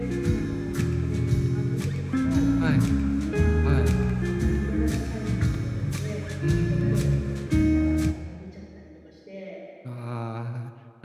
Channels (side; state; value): both; identical; correlation 1.00